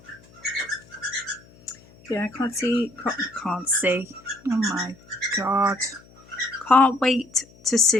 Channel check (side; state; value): left; noise; hum, 26 dB below the sound